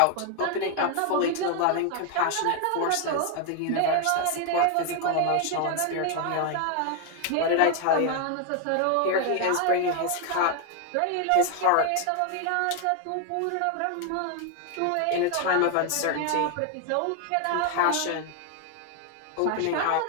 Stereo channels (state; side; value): different; both; correlation 0.01